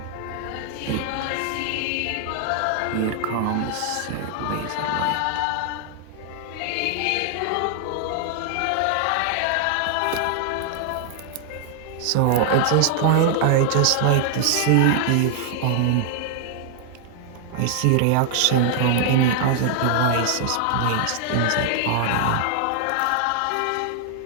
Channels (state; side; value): different; both; correlation 0.00